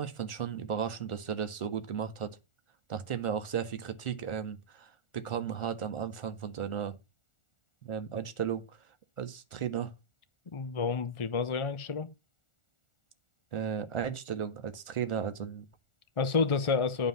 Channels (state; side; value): late; right; 1.4 ms